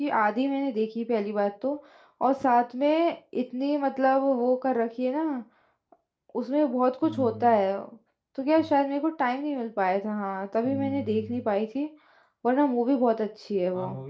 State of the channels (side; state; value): both; identical; correlation 1.00